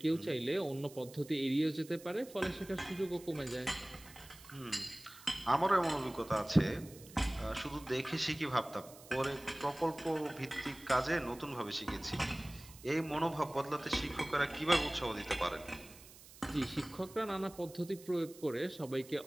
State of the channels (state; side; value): noise; right; hiss, 19 dB below the sound